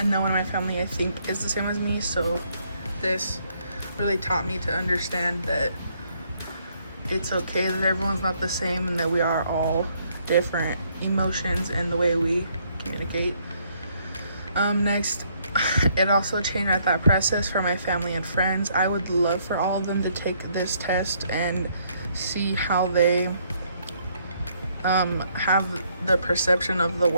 no one in my family I think is the same as me. So this really taught me to understand that it's okay that everyone's not the same and that we are all different emotions and the way we communicate. Next, it also changed my thought process for my family and friends. I would love for all of them to take this test and see how they have the perception of the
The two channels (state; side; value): inverted; both; correlation -0.69